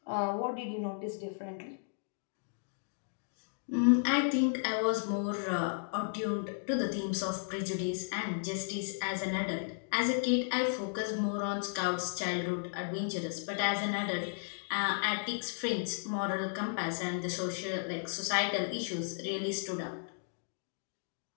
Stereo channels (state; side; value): silent; right; digital silence